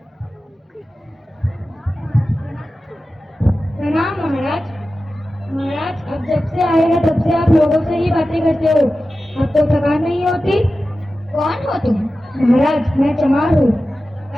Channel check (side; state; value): both; normal; correlation 0.94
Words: प्रणाम महाराज। महाराज, अब जब से आए हैं तब से आप लोगों से ही बातें करते हो, अब तो थकान नहीं होती? कौन हो तुम? महाराज, मैं चमार हूँ।